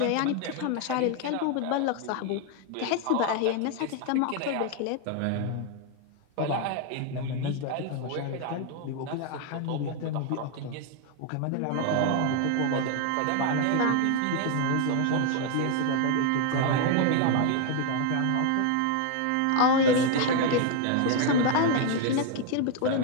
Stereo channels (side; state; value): both; different; correlation 0.00